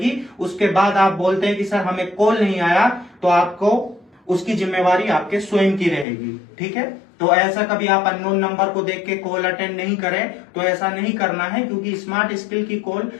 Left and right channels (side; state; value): right; drops out; at 6.1 s